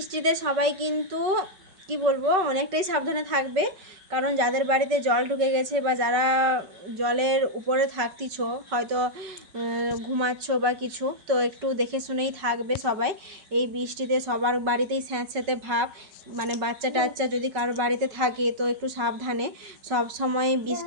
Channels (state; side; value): late; left; 5.2 ms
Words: সবাই কিন্তু কি বলবো অনেকটাই সাবধানে থাকবে, কারণ যাদের বাড়িতে জল ঢুকে গেছে বা যারা জলের উপরে থাকতিছ, হয়তো ঘুমাচ্ছ বা কিছু, তো একটু দেখে শুনেই থাকবে সবাই। এই বৃষ্টিতে সবার বাড়িতেই স্যাঁতস্যাঁতে ভাব, মানে বাচ্চা টাচ্চা যদি কারোর বাড়িতে থাকে তো একটু সাবধানে সব সময়